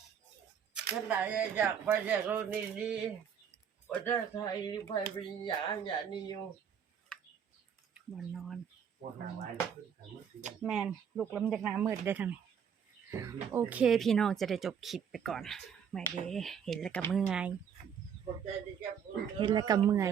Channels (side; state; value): left; quieter; 7.7 dB